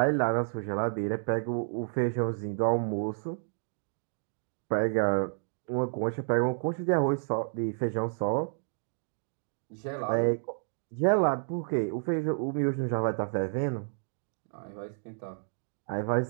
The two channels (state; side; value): silent; left; digital silence